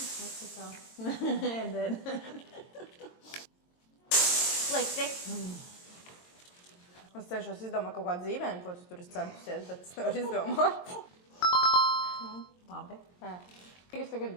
Slikti. Es cenšos izdomāt kaut kādu dzīvējumu, ko tu tur esi centusies, bet es nevaru izdomāt. Labi. Es tagad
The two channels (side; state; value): right; late; 22 ms